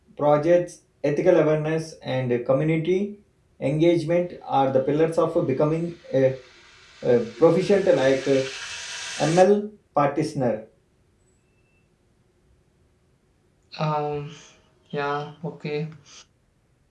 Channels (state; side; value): identical; both; correlation 1.00